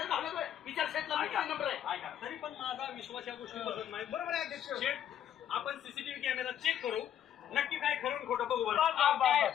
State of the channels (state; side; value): quieter; right; 10.3 dB